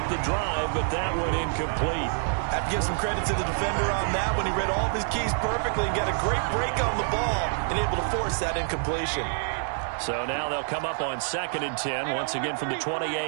the drive, but that one incomplete. Have to give some credit to the defender on that when he read all of his keys perfectly and got a great break on the ball and able to force that incompletion. So now they'll come up on 2nd and 10, once again from the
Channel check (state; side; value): silent; left; 60 dB below the other